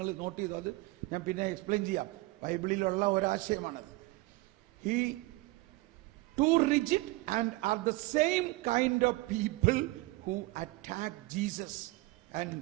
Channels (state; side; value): quieter; left; 21.6 dB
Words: നോട്ട് ചെയ്തു, അത് ഞാൻ പിന്നെ എക്സ്പ്ലെയിൻ ചെയ്യാം. ബൈബിളിലുള്ള ഒരാശയമാണ്. He too rigid and are the same kind of people who attack Jesus and